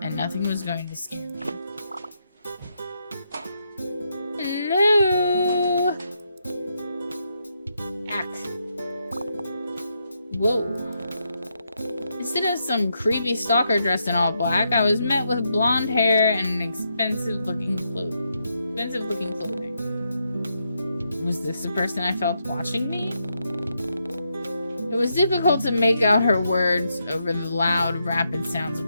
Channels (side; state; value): both; inverted; correlation -0.80